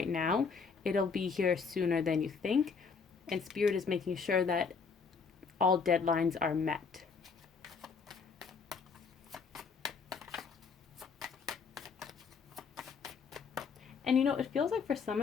now, it'll be here sooner than you think. And Spirit is making sure that all deadlines are met. And you know, it feels like for some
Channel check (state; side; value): quieter; right; 5.4 dB